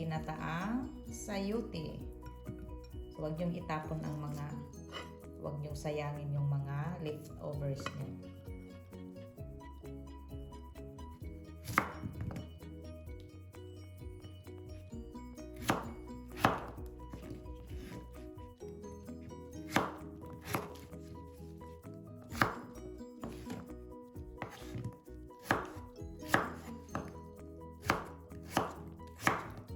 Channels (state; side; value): identical; both; correlation 1.00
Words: sayote. So, huwag niyong itapon ang mga, huwag niyong sayangin yung mga leftovers niyo.